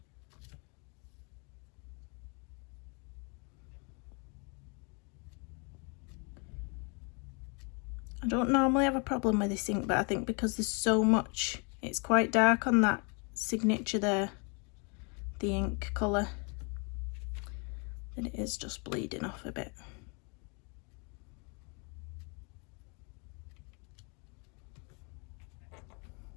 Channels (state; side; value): quieter; right; 34.4 dB